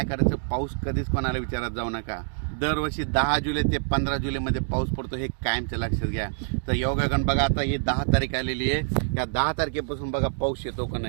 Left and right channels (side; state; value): left; silent; digital silence